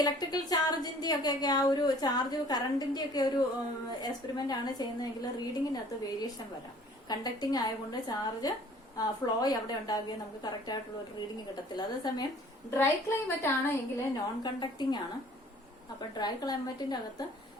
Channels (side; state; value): both; normal; correlation 0.53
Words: ഇലക്ട്രിക്കൽ ചാർജിന്റെ ഒക്കെ ആ ഒരു ചാർജ് കറണ്ടിന്റെ ഒക്കെ ഒരു എക്സ്പെരിമെന്റ് ആണ് ചെയ്യുന്നതെങ്കിൽ റീഡിങ്ങിനകത്ത് വേരിയേഷൻ വരാം. കണ്ടക്ടിങ് ആയതുകൊണ്ട് ചാർജ് ഫ്ലോ അവിടെ ഉണ്ടാകുകയും നമുക്ക് കറക്റ്റ് ആയിട്ടുള്ള ഒരു റീഡിങ് കിട്ടത്തില്ല. അതേസമയം ഡ്രൈ ക്ലൈമറ്റ് ആണ് എങ്കിൽ നോൺ കണ്ടക്ടിങ് ആണ്. അപ്പൊ ഡ്രൈ ക്ലൈമറ്റിന്റെ അകത്ത്